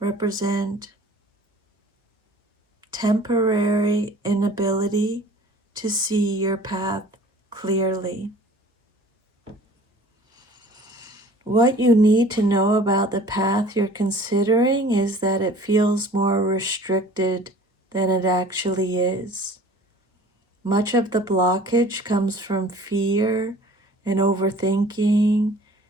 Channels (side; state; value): both; normal; correlation 0.47